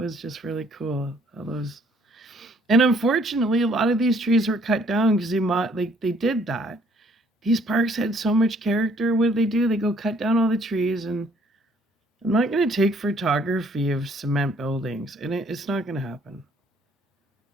just really cool. How those, and unfortunately, a lot of these trees were cut down because they did that. These parks had so much character. What do? They go cut down all the trees, and I'm not going to take photography of cement buildings, and it's not going to happen.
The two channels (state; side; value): normal; both; correlation 0.63